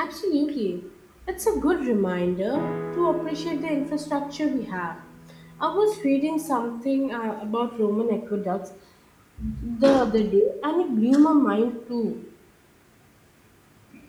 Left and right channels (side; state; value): both; identical; correlation 1.00